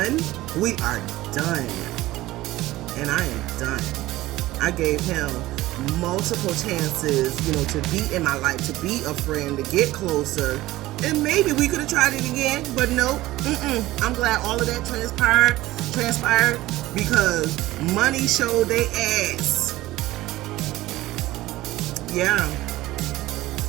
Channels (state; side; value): quieter; left; 17.2 dB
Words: we are done. And I am done. I gave him multiple chances, to be in my life, to be a friend, to get closer. And maybe we could have tried it again, but no. I'm glad all of that transpired because money showed they ass. Yeah.